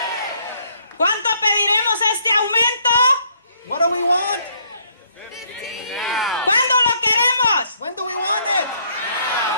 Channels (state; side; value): inverted; both; correlation -0.67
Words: ¿Cuánto pediremos este aumento? What do we want? ¿Cuándo lo queremos? When do we want it?